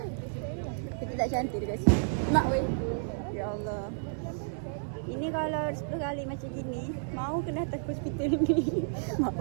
Kita tak cantik dekat situ. Mak weh. Ya Allah. Ini kalau 10 kali macam gini, mau kena datang ke hospital ni. Mak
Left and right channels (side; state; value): left; silent; digital silence